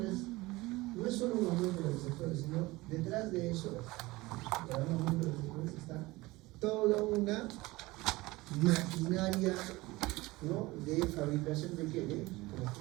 no es solo un aumento de receptores, sino detrás de eso, para un aumento de receptores, está toda una maquinaria, ¿no? De fabricación de ¿qué? De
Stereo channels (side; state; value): left; quieter; 20.7 dB